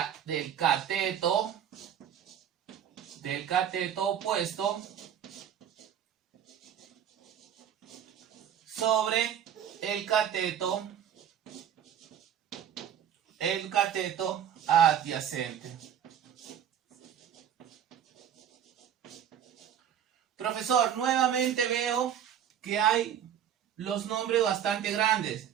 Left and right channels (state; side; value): quieter; left; 9.5 dB